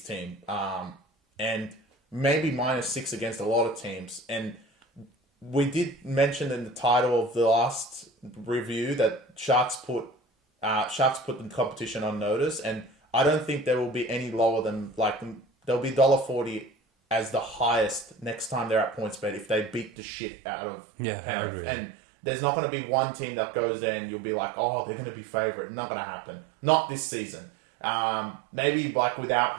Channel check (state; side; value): drops out; left; at 19.9 s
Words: teams. And maybe -6 against a lot of teams. And we did mention in the title of the last review that Sharks put the competition on notice, and I don't think there will be any lower than there'll be $1.40 as the highest next time they're at PointsBet if they beat the shit out of Penrith. And there's not going to be one team that goes there and you'll be like, oh, they're going to be favourite. Not going to happen. Not this season. Maybe without